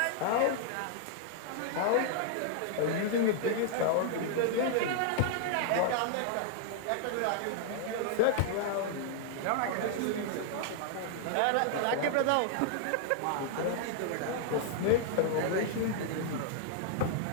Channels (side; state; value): both; different; correlation -0.01